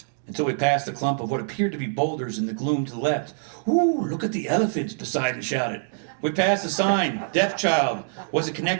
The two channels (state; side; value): silent; left; digital silence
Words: Until we passed a clump of what appeared to be boulders in the gloom to the left. "Ooh, look at the elephants," Poseidon shouted. We passed a sign, "Deaf Child." Was it